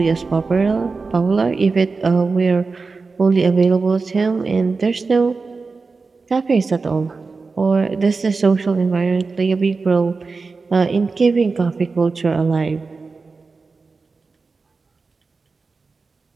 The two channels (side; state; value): left; quieter; 4.3 dB